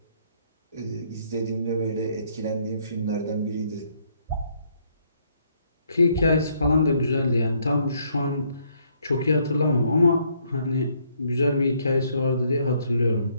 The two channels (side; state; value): both; inverted; correlation -0.69